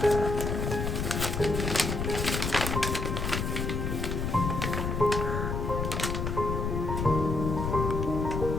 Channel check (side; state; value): left; noise; rumble, 1 dB below the sound